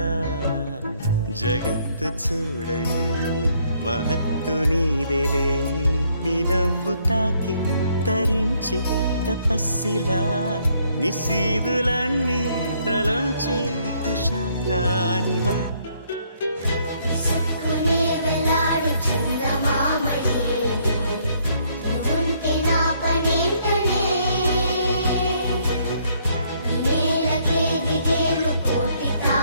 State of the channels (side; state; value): both; inverted; correlation -0.68